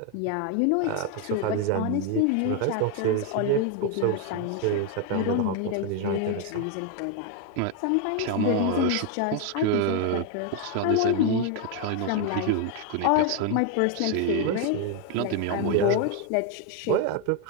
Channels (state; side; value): different; both; correlation 0.01